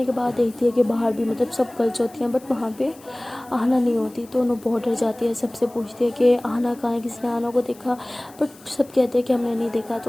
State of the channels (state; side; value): noise; left; hiss, 25 dB below the sound